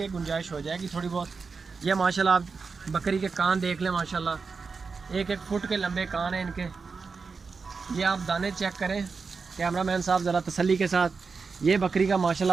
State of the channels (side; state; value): left; quieter; 4.9 dB